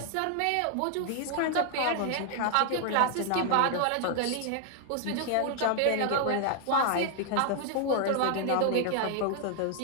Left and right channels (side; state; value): both; different; correlation 0.00